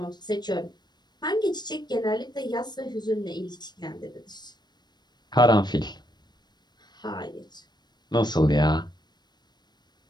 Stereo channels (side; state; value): right; late; 0.21 ms